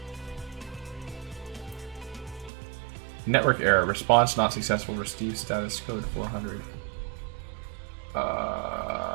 Network error. Response not successful. Receive status code 400.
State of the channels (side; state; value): left; drops out; at 2.5 s